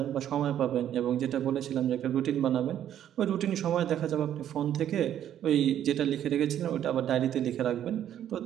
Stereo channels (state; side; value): quieter; left; 10.7 dB